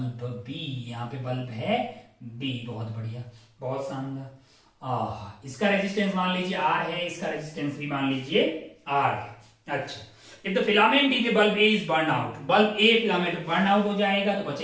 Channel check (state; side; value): identical; both; correlation 1.00